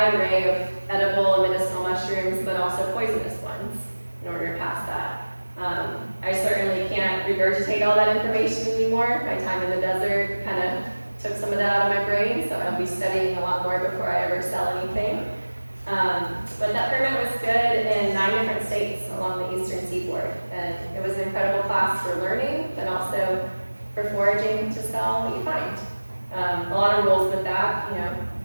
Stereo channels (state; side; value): inverted; both; correlation -1.00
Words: array of edible and medicinal mushrooms, but also poisonous ones in order to pass that. I certainly can't regurgitate all that information anymore. My time in the desert kind of took some of that out of my brain, so I'll be studying a lot more before I ever sell anything. But that permit was good in 9 different states along the eastern seaboard. And it was an incredible class for learning, but also for foraging to sell what you find. A lot of rules with that,